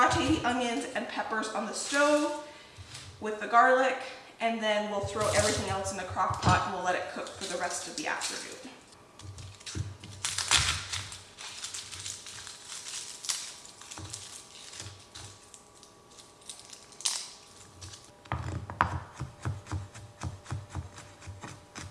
the onions and peppers on the stove with the garlic, and then we'll throw everything else in the crock pot and we'll let it cook for the rest of the afternoon.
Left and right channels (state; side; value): identical; both; correlation 1.00